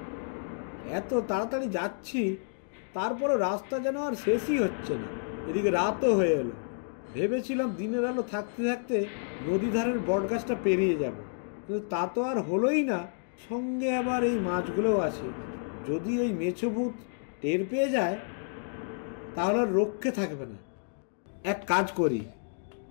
এত তাড়াতাড়ি যাচ্ছি, তারপরও রাস্তা যেন আর শেষই হচ্ছে না। এদিকে রাতও হয়ে এলো। ভেবেছিলাম দিনের আলো থাকতে থাকতে নদী ধারের বটগাছটা পেরিয়ে যাব, কিন্তু তা তো আর হলোই না। সঙ্গে আবার এই মাছগুলোও আছে। যদি ওই মেছো ভূত টের পেয়ে যায় তাহলে আর রক্ষে থাকবে না। এক কাজ করি,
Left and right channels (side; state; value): right; silent; digital silence